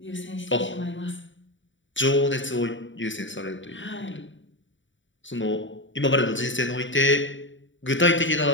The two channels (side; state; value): right; late; 0.55 ms